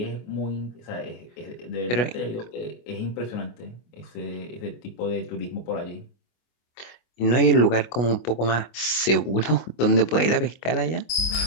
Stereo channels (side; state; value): right; late; 25 ms